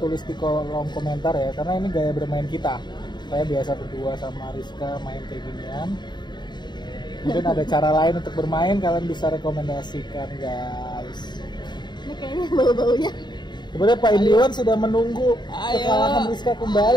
di kolom komentar ya, karena ini gaya bermain kita. Saya biasa berdua sama Rizka main kayak ginian. Mungkin ada cara lain untuk bermain, kalian bisa rekomendasikan guys. Ini kayaknya bau-baunya. Sebenarnya Pak Indiwan sudah menunggu Ayo. kekalahan Rizka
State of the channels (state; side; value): late; right; 0.21 ms